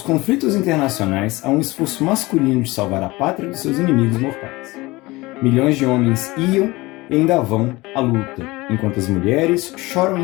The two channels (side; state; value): right; quieter; 21.3 dB